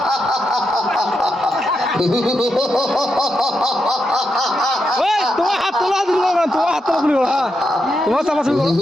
তোমার হাত তোলা দিল না, তোমার হাত তোলা দিল না, তোমার চাপাচাপি করো।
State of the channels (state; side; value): normal; both; correlation 0.85